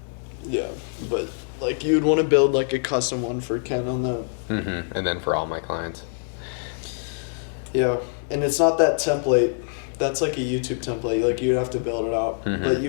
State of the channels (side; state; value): right; silent; 62 dB below the other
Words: Yeah, but like you'd want to build like a custom one for Ken on that. And then for all my clients. Yeah, and it's not that template. That's like a YouTube template. Like you'd have to build it out, but